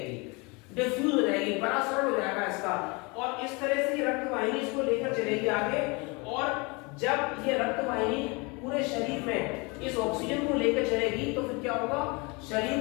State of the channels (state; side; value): quieter; right; 28.2 dB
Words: डिफ्यूज हो जाएगी, परासरण हो जाएगा इसका, और इस तरह से ये रक्त वाहिनी इसको लेकर चलेगी आगे। और जब ये रक्त वाहिनी पूरे शरीर में इस ऑक्सीजन को लेकर चलेगी तो फिर क्या होगा,